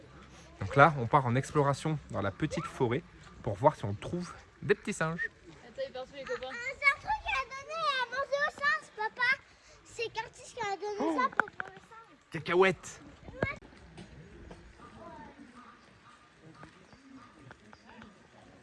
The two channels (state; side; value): identical; both; correlation 1.00